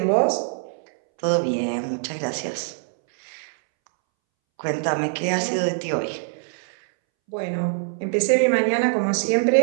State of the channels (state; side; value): silent; left; 63 dB below the other